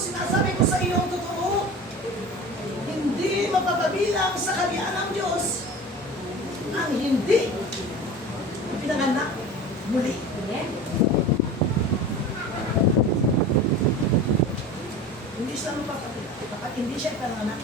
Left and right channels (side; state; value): both; normal; correlation 0.35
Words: sinasabi ko sa iyo ang totoo, hindi mapapabilang sa kaharian ng Diyos ang hindi pinanganak muli. Amen. Hindi siya mapapabilang. Kapag hindi siya pinanganak